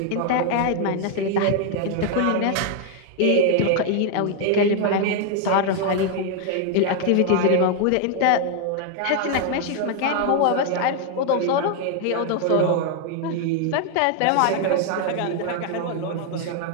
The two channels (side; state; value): both; different; correlation 0.00